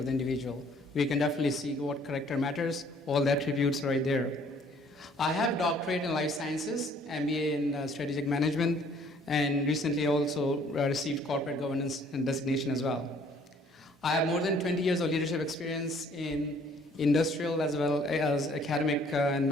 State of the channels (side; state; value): both; normal; correlation 0.59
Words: the individual. We can definitely see what character matters, all the attributes right there. I have doctorate in life sciences, MBA in strategic management, and recently also received corporate governance and designation as well. I have more than 20 years of leadership experience in industrial as well as academic and